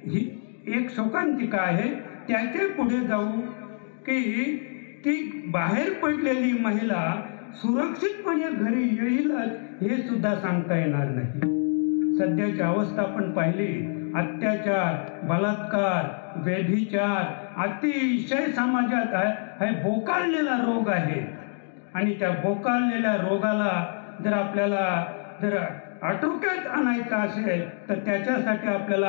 ही एक शोकांतिका आहे. त्याच्या पुढे जाऊ की ती बाहेर पडलेली महिला सुरक्षितपणे घरी येईलच हे सुद्धा सांगता येणार नाही. सध्याची अवस्था आपण पाहिली, अत्याचार, बलात्कार, व्यभिचार अतिशय समाजात हा बोकाळलेला रोग आहे. आणि त्या बोकाळलेल्या रोगाला जर आपल्याला जर आटोक्यात आणायचं असेल तर त्याच्यासाठी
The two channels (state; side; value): silent; right; 61 dB below the other